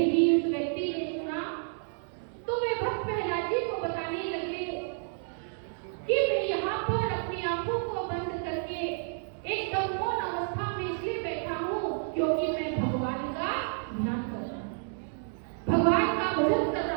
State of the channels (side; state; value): left; silent; 58 dB below the other